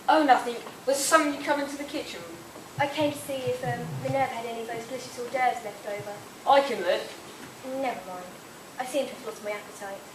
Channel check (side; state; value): both; identical; correlation 1.00